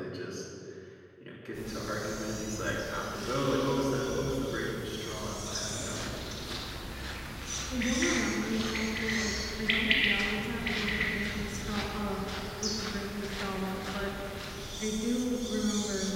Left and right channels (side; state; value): both; identical; correlation 1.00